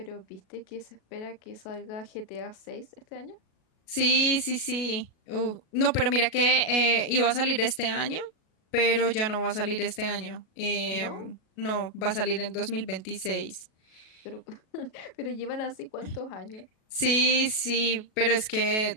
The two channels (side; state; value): right; late; 37 ms